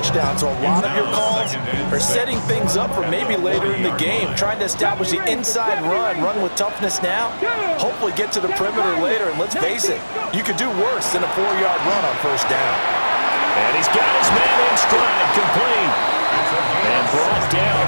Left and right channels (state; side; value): inverted; both; correlation -1.00